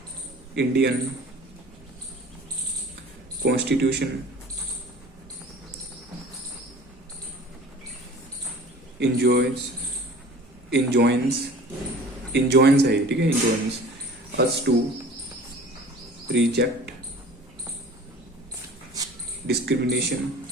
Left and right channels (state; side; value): normal; both; correlation 0.44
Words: इंडियन कॉन्स्टिट्यूशन इंजॉइंस है, ठीक है, enjoins us to reject discrimination